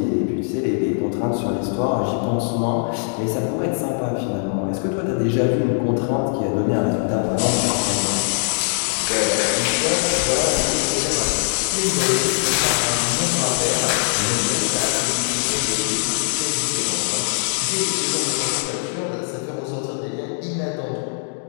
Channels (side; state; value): right; silent; digital silence